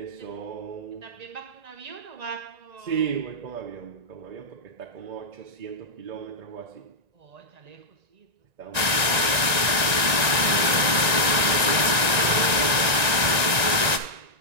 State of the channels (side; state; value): left; late; 1.9 ms